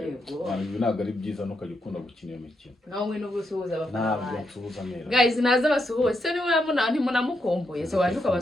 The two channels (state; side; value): normal; both; correlation 0.81